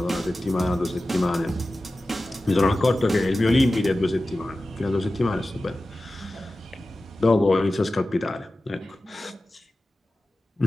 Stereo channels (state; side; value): normal; both; correlation 0.95